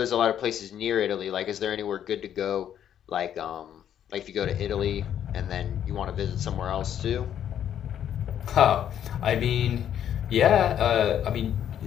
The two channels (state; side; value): quieter; right; 9.9 dB